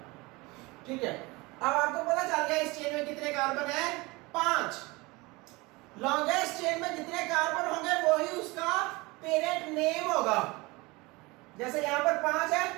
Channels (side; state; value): left; quieter; 23.7 dB